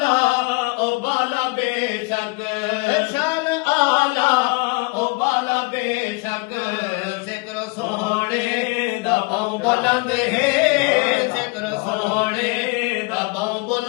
ओ बाला बेशक शान आला ओ बाला बेशक जिक्र सोने दबाऊं बुलंद है जिक्र सोने दबाऊं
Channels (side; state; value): right; quieter; 27.9 dB